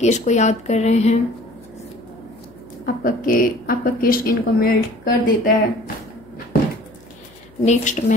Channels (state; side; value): noise; left; hum, 27 dB below the sound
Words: को याद कर रहे हैं, आपका केस इनको मेल्ट कर देता है। Next